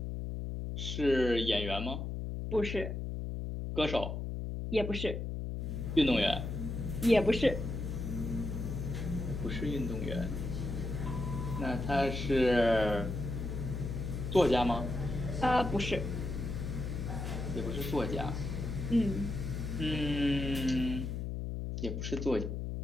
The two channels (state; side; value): noise; left; hum, 4 dB below the sound